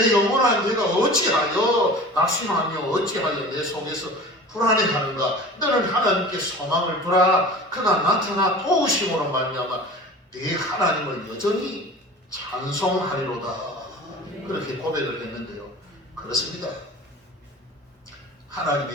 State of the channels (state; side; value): normal; both; correlation 0.39